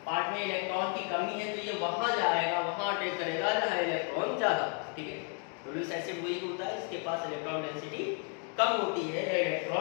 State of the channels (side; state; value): right; quieter; 38.0 dB